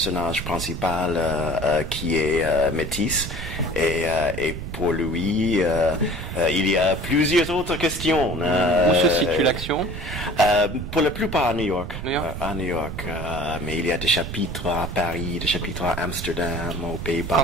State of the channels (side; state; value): right; noise; rumble, 7 dB below the sound